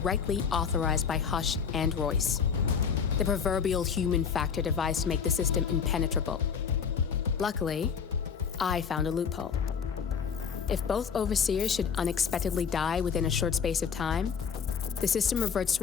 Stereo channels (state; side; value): quieter; right; 6.7 dB